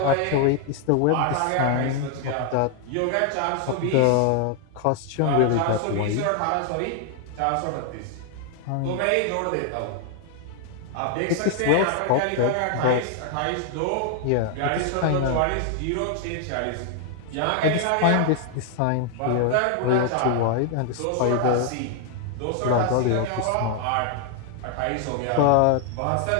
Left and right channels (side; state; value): both; different; correlation 0.00